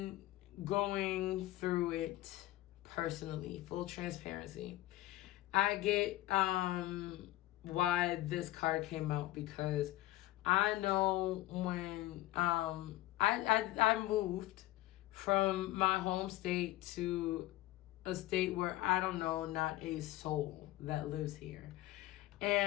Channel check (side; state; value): right; quieter; 16.4 dB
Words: going through it personally, full transparency. I get why this card came out, because I know when I moved from my home state to a state where I don't know not a soul that lives here.